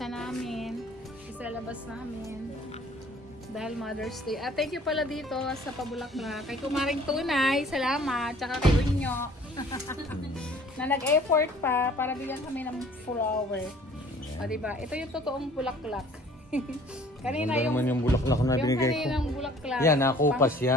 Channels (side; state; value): both; normal; correlation 0.53